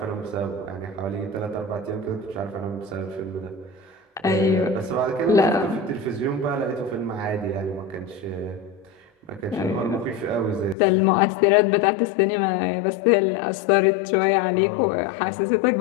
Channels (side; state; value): right; drops out; at 10.8 s